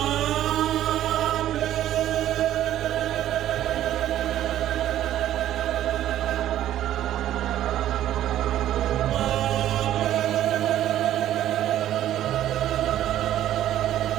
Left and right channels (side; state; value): left; quieter; 12.3 dB